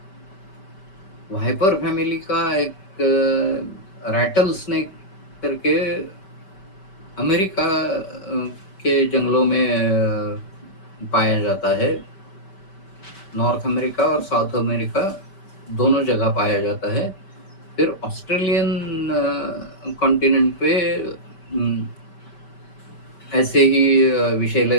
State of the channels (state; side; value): late; right; 5.2 ms